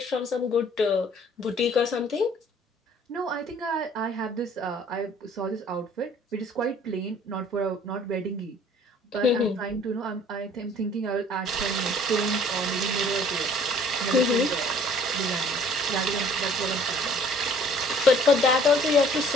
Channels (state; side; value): normal; both; correlation 0.55